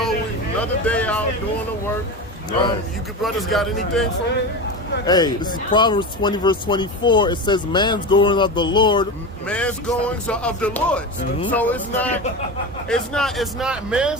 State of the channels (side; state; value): both; normal; correlation 0.23